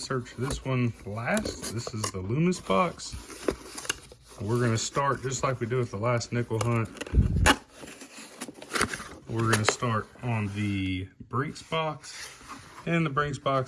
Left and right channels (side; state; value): both; identical; correlation 1.00